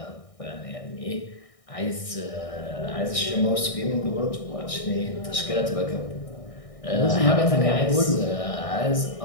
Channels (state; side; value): late; right; 1.6 ms